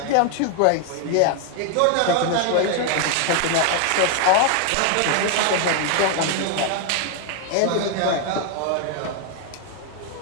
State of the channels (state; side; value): different; both; correlation 0.00